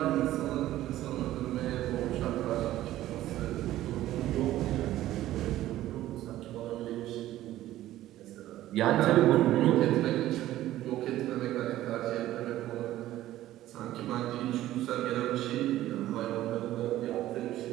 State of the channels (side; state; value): left; quieter; 14.4 dB